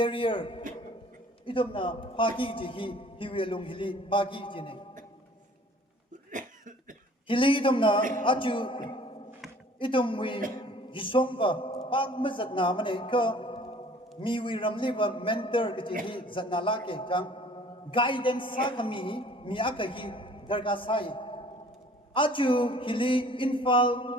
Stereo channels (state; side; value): normal; both; correlation 0.52